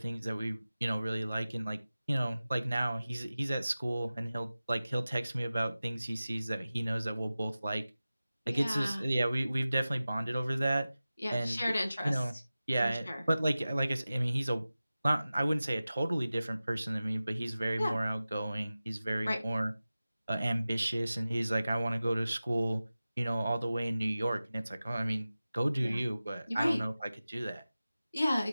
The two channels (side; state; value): both; inverted; correlation -0.96